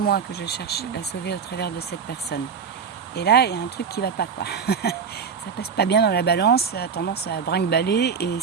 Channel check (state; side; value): quieter; left; 6.3 dB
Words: que je cherche à sauver au travers de cette personne. Et là, il y a un truc qui va pas, quoi. Ça passe pas bien dans la balance, ça a tendance à brinque-baller, et